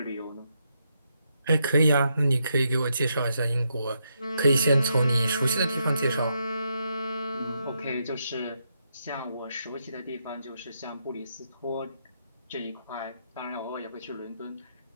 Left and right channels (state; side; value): inverted; both; correlation -0.80